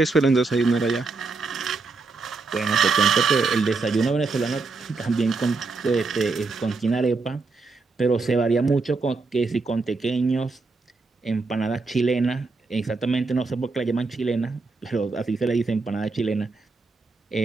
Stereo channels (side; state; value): left; quieter; 4.0 dB